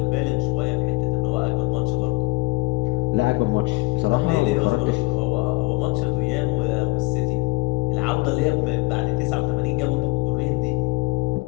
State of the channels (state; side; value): quieter; right; 21.9 dB